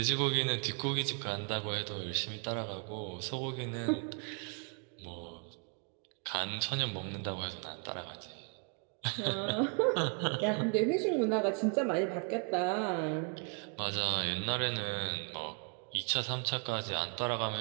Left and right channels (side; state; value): left; quieter; 39.9 dB